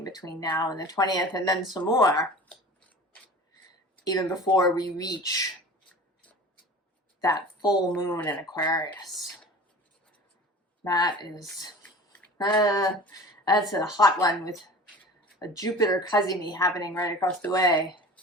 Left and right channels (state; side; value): normal; both; correlation 0.39